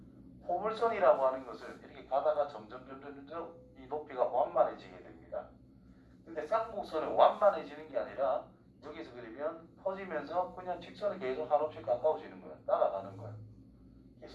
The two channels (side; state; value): both; identical; correlation 1.00